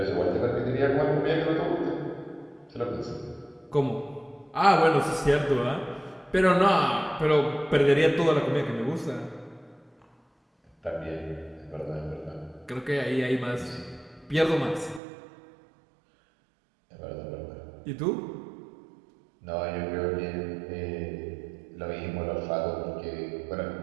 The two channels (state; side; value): drops out; left; at 15.0 s